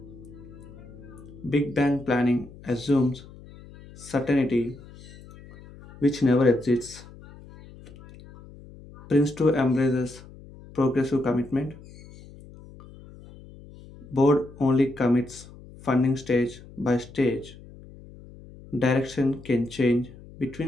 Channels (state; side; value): noise; left; hum, 19 dB below the sound